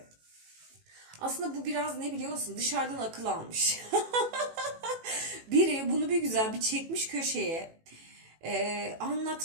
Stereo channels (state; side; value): late; left; 18 ms